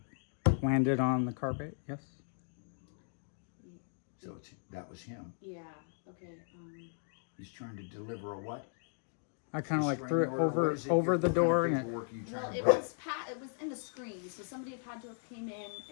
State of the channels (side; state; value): right; silent; digital silence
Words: it landed on the carpet. Yes. So that was him. Yeah. Okay. He's trying to deliver a what? I kind of like Restraining threw it order? What over is it? over What the kind of door and it. paperwork are you trying Well, to it bring? was in the screen, so somebody had to have came in